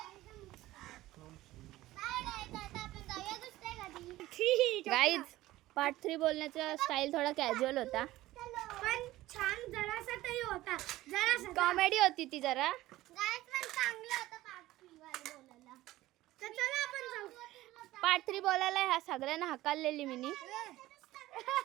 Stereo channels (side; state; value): left; quieter; 16.6 dB